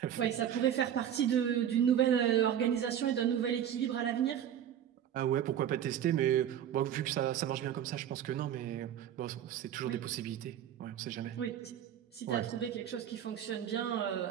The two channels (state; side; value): quieter; left; 10.0 dB